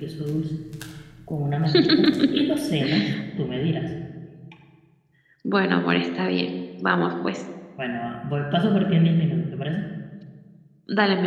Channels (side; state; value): both; identical; correlation 1.00